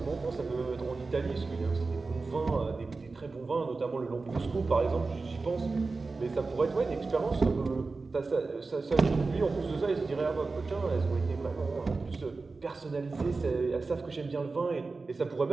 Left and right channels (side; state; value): left; quieter; 3.9 dB